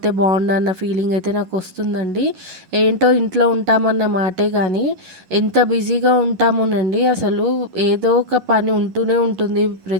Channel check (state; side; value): late; left; 11 ms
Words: బావుండన్న ఫీలింగ్ అయితే నాకొస్తుందండి. ఏంటో ఇంట్లో ఉంటామన్న మాటే గానీ ఎంత బిజీగా ఉంటామోనండి అసలు ఏదో ఒక పని ఉంటూనే ఉంటుంది